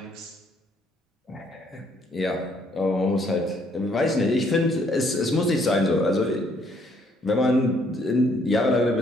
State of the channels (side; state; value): both; normal; correlation 0.67